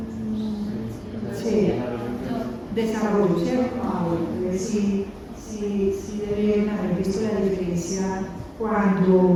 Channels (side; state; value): both; identical; correlation 1.00